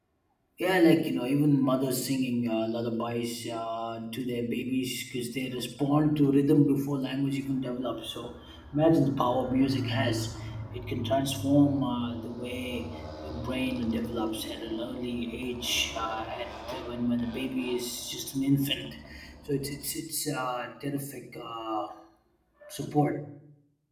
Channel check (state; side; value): identical; both; correlation 1.00